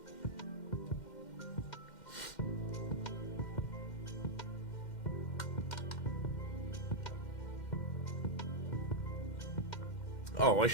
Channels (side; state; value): right; late; 2.1 ms